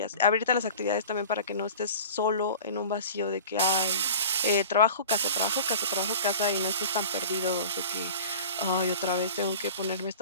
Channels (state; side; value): inverted; both; correlation -0.39